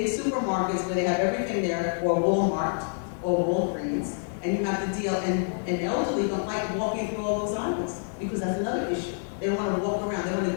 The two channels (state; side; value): silent; right; digital silence